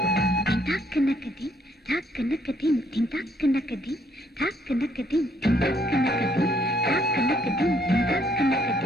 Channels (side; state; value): both; normal; correlation 0.68